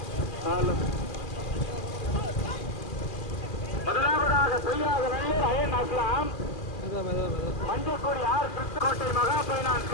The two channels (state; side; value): late; right; 2.5 ms